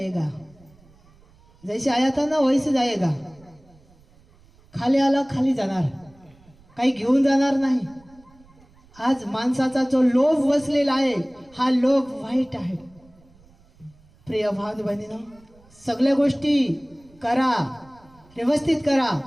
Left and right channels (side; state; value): right; noise; rumble, 28 dB below the sound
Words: जैसे आया था ना वैसे जाएगा. खाली आला खाली जाणार, काही घेऊन जाणार नाही. आज माणसाचा जो लोभ बसलेला आहे, हा लोभ वाईट आहे. प्रिय भाव बहिणीनो, सगळ्या गोष्टी करा, व्यवस्थित करा.